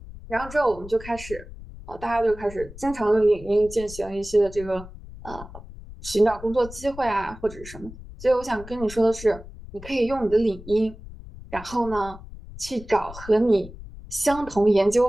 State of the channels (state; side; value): noise; left; rumble, 15 dB below the sound